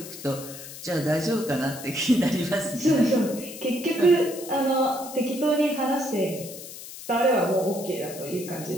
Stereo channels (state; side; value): noise; left; hiss, 13 dB below the sound